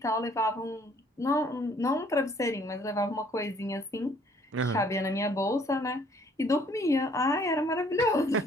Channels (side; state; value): both; normal; correlation 0.61